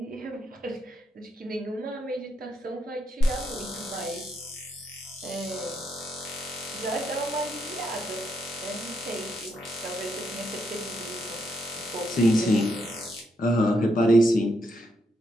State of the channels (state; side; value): normal; both; correlation 0.79